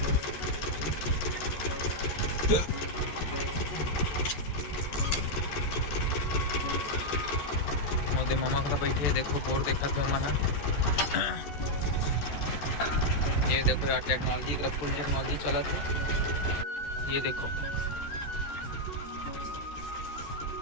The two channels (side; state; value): right; late; 14 ms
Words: मोदे मामा का बैठे देखो बोर देखा थे मना। ये देखो यार टेक्नोलॉजी का फुल टेक्नोलॉजी चला थे। ये देखो